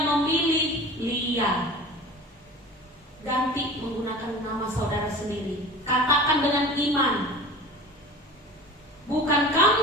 memilih Lia. Ganti menggunakan nama saudara sendiri. Katakan dengan iman, bukan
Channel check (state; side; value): normal; both; correlation 0.38